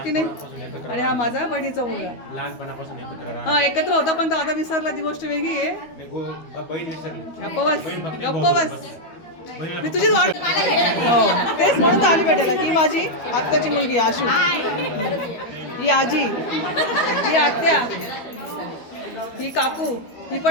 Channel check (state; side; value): late; right; 12 ms